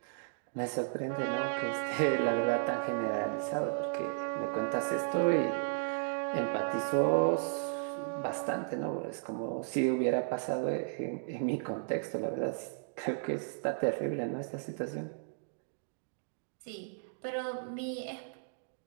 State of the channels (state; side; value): silent; left; digital silence